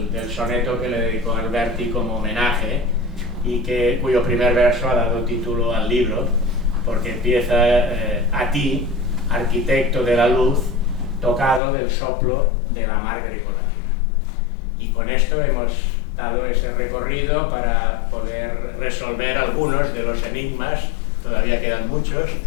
del soneto que le dedicó Alberti como homenaje, y cuyo primer verso ha dado título al libro, porque empieza a ti, arquitecto de la luz, tocado del soplo de la mar grecolatina. Y con esto hemos dado ese recorrido para poder resolver algunos de los enigmas, todavía quedan muchos,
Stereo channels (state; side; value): drops out; right; at 11.6 s